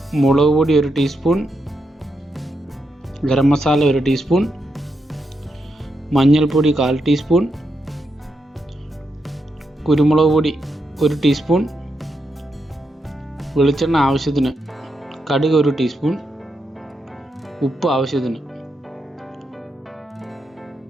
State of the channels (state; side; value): normal; both; correlation 0.84